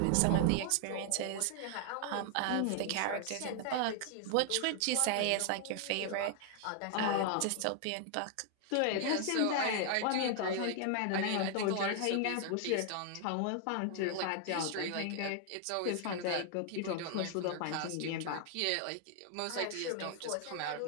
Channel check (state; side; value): different; both; correlation 0.00